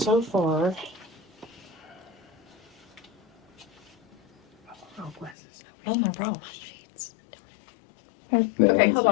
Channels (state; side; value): drops out; right; at 5.4 s